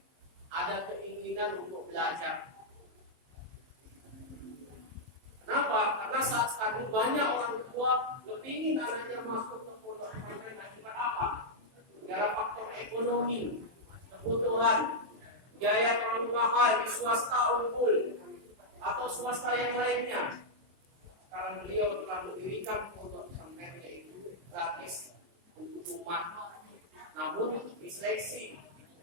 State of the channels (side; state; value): left; late; 23 ms